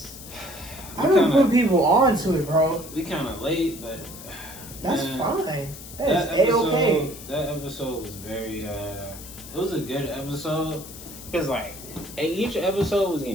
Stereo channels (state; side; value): noise; left; hiss, 14 dB below the sound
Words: I don't put people on to it, bro. We kind of late, but that's fine. That's A-okay. That episode was very. It was a good episode because like each episode was